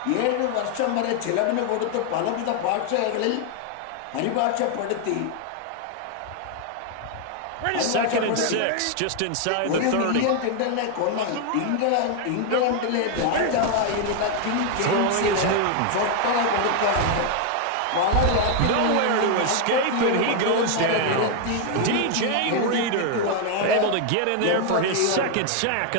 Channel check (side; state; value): both; different; correlation 0.00